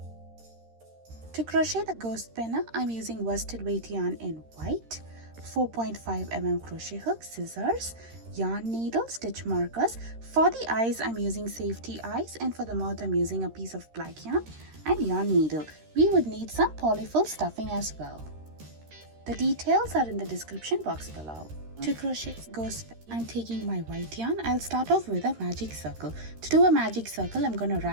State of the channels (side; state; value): left; late; 13 ms